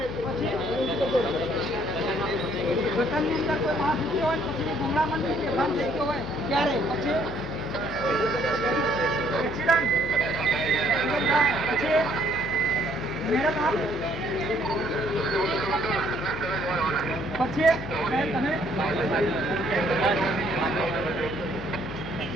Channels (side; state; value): left; noise; hum, 10 dB below the sound